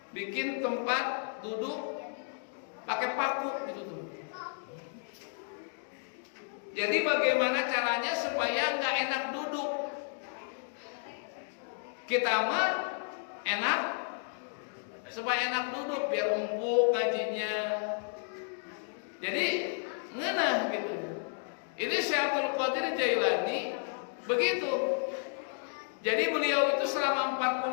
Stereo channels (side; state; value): right; silent; 56 dB below the other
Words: Bikin tempat duduk pakai paku gitu tuh. Jadi bagaimana caranya supaya nggak enak duduk? Kita mah enak supaya enak duduk biar empuk ngajinya. Jadi ngenah gitu. Ini Syekh Abdul Qadir Jailani begitu. Jadi beliau itu selama